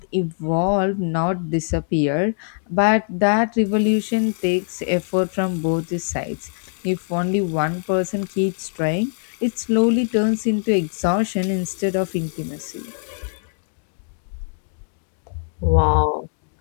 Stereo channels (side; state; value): right; silent; digital silence